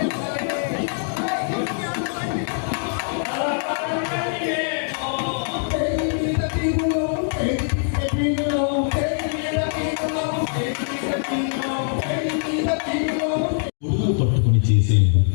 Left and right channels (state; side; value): silent; right; digital silence